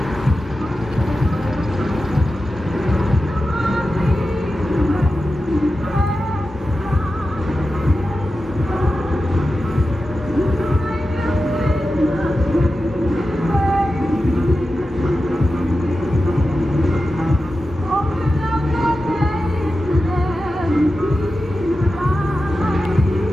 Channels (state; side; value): normal; both; correlation 0.92